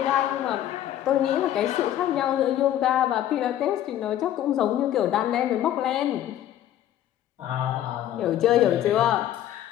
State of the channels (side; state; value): right; quieter; 12.0 dB